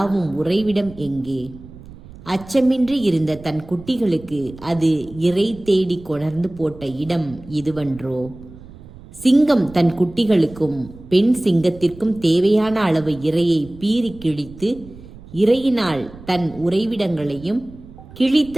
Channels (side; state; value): right; noise; rumble, 19 dB below the sound